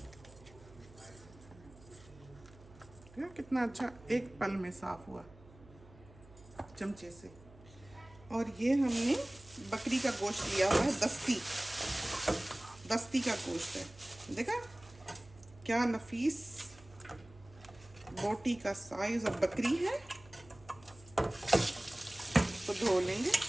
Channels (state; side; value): noise; right; hum, 22 dB below the sound